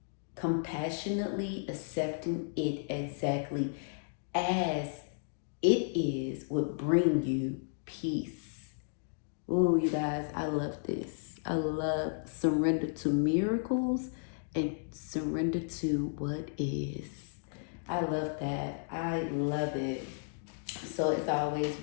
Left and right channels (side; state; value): right; silent; digital silence